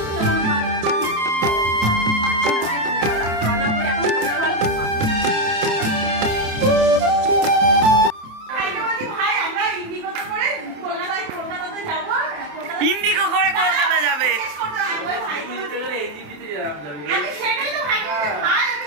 ইন্ডিগো করে কলকাতা যাবে।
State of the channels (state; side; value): late; left; 27 ms